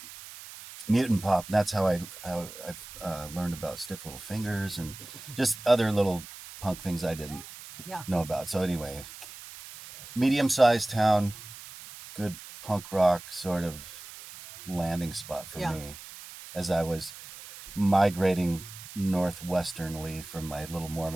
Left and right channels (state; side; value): noise; right; hiss, 15 dB below the sound